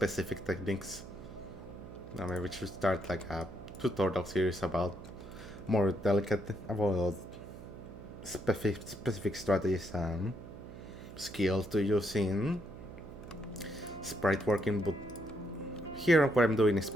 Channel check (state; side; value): noise; right; hum, 14 dB below the sound